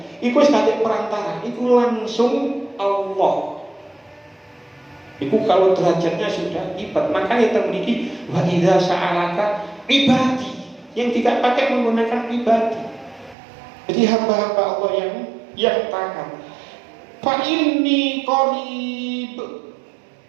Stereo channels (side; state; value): left; drops out; at 13.4 s